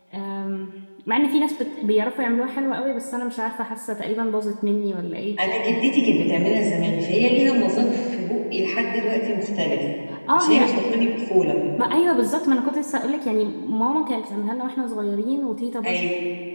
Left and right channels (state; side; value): inverted; both; correlation -1.00